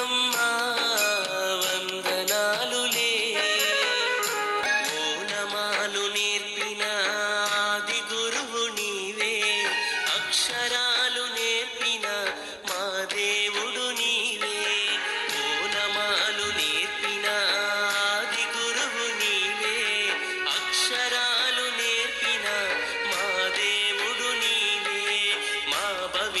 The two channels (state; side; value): identical; both; correlation 1.00